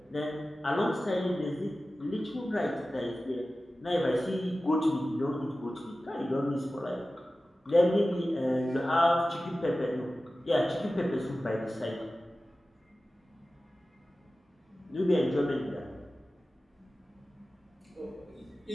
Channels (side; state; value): both; normal; correlation 0.95